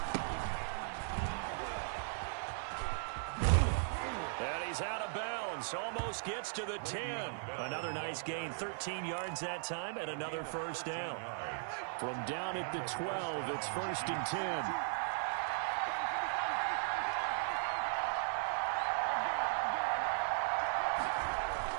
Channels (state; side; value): silent; left; 53 dB below the other